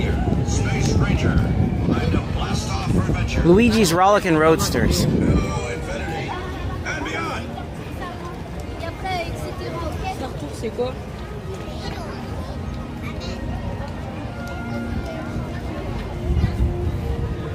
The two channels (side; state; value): both; identical; correlation 1.00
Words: Luigi's Rollickin' Roadsters.